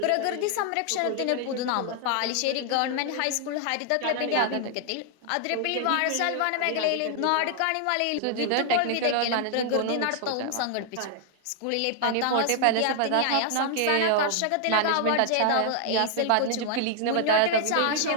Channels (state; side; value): different; both; correlation 0.00